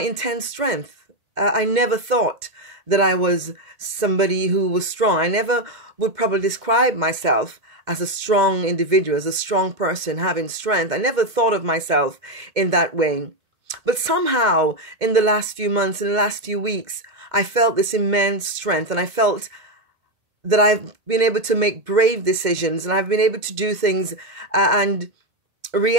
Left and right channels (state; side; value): late; left; 2.2 ms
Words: strength. I never thought that I was somebody who was strong. I never would probably describe myself as a strong individual, as a strong person having strength. I never thought of myself in that way. But somehow in the last few months, in the last few weeks, I felt this immense strength, and I felt that I've been able to make brave decisions, and I've been able to do things and